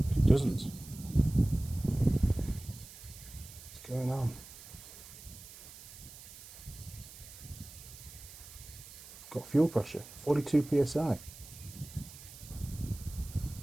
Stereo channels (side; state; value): right; noise; hiss, 16 dB below the sound